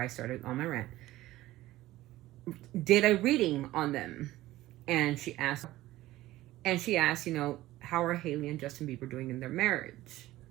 I started on my rant, did a reading on them, and she asked, how are Hailey and Justin Bieber doing in their marriage?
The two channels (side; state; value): left; quieter; 16.4 dB